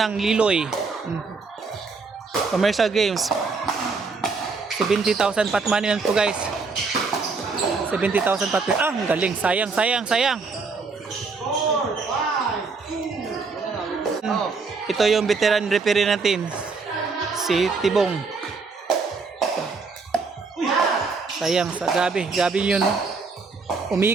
Liloy. Commercial games. 70,000 pot money lang po guys. 70,000 pot money. Ah, ang galing. Sayang. Ito yung veteran referee natin. Si Tibong. Sayang. Grabe yun.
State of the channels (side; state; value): left; quieter; 4.5 dB